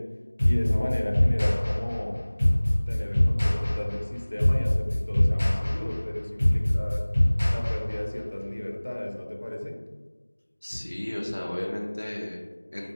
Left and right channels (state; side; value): inverted; both; correlation -1.00